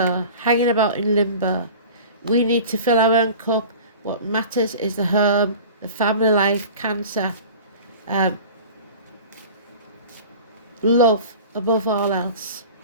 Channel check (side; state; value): both; inverted; correlation -0.40